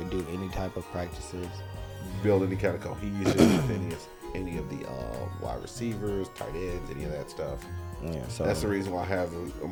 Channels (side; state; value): both; identical; correlation 1.00